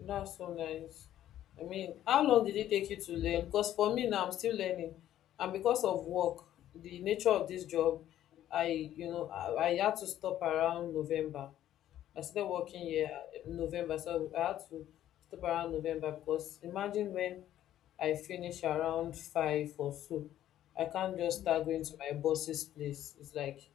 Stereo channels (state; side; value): quieter; right; 12.2 dB